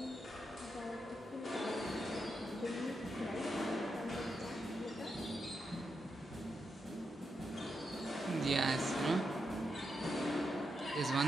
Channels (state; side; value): normal; both; correlation 0.85